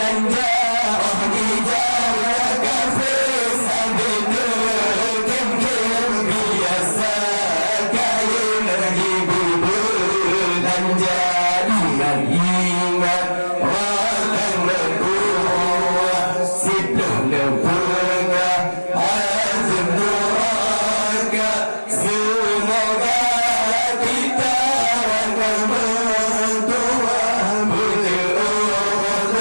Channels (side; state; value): both; inverted; correlation -1.00